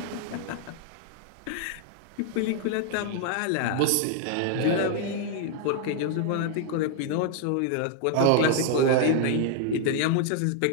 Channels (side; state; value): both; different; correlation 0.00